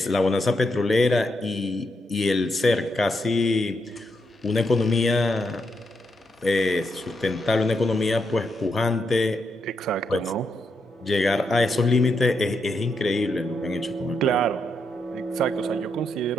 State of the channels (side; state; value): both; normal; correlation 0.81